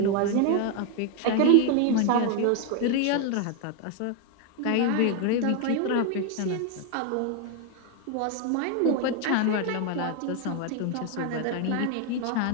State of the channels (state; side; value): different; both; correlation 0.01